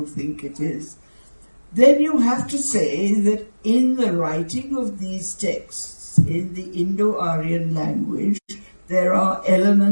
think it is, then you have to say that in the writing of these texts, in the Indo-Aryan language, there are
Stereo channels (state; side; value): inverted; both; correlation -1.00